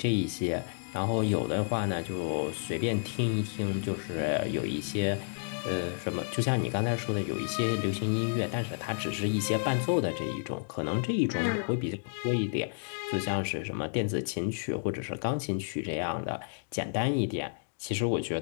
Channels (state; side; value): silent; right; digital silence